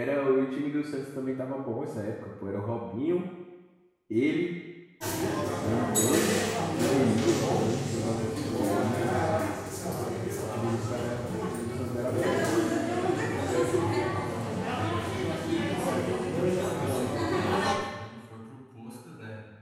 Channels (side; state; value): both; identical; correlation 1.00